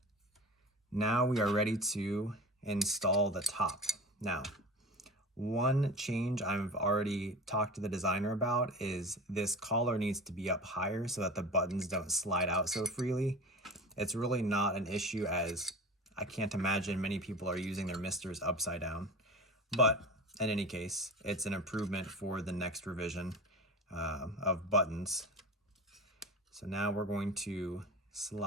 now we are ready to install the top. Now, one change I've already talked to the designer about is this collar needs to be up higher so that the buttons don't slide out so freely. It's really not an issue, as I can't imagine many people are using their MiSTers upside down. But in any case, it's an improvement for the next revision of buttons. So now we're going to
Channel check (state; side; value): normal; both; correlation 0.34